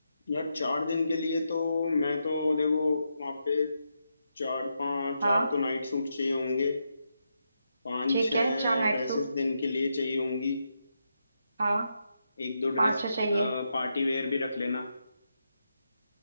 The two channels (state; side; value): inverted; both; correlation -0.84